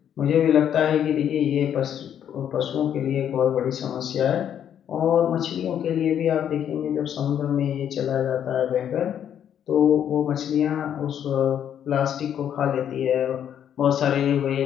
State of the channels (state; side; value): quieter; right; 9.4 dB